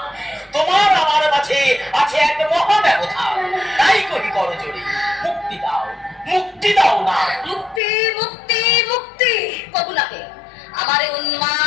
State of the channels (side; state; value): right; drops out; at 7.8 s